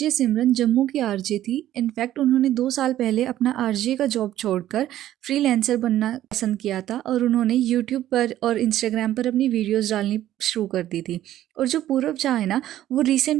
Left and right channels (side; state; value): left; quieter; 13.0 dB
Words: सिमरन जम्मू की आरजे थी। इनफैक्ट उन्होंने 2 साल पहले अपना आरजे का जॉब छोड़कर फ्रीलांसर बनना पसंद किया था और उन्होंने यूट्यूब पर और इंस्टाग्राम पर अपनी वीडियोज़ डालनी शुरू कर दी थी। और जो पूरव झा है ना, वो